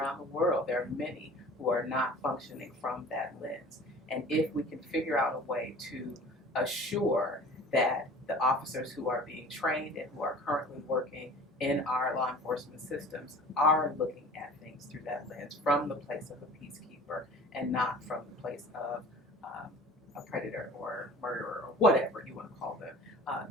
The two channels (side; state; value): both; normal; correlation 0.43